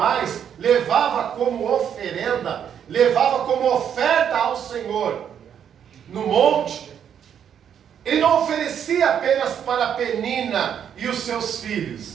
levava como oferenda, levava como oferta ao Senhor no monte, ele não oferecia apenas para Penina e os seus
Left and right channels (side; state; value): left; quieter; 8.7 dB